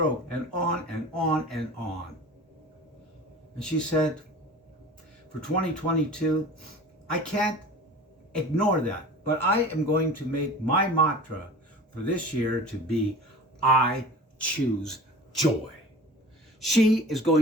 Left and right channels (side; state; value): both; normal; correlation 0.39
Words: and on and on and on. And she said, for 2022, I can't ignore that, but I am going to make my mantra for this year to be, I choose joy. She is